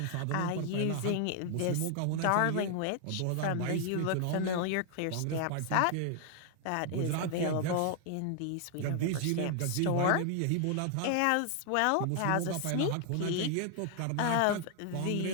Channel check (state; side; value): different; both; correlation 0.00